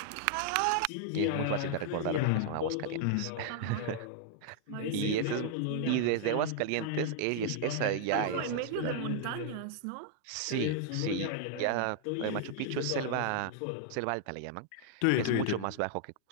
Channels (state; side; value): different; both; correlation -0.01